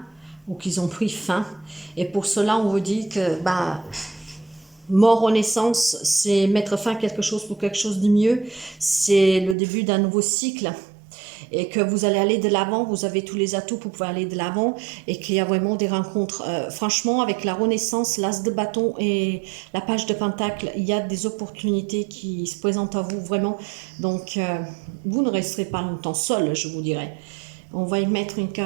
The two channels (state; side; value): drops out; left; at 9.6 s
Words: ou qui ont pris fin. Et pour cela, on vous dit que mort renaissance, c'est mettre fin à quelque chose pour quelque chose de mieux. C'est le début d'un nouveau cycle. Et que vous allez aller de l'avant, vous avez tous les atouts pour pouvoir aller de l'avant et qu'il y a vraiment des rencontres. Franchement, avec la Renaissance, l'As de bâton et la page de Pentacle, il y a des opportunités qui se présentent à vous vraiment. Donc, vous ne resterez pas longtemps seul, je vous dirais. On va y mettre une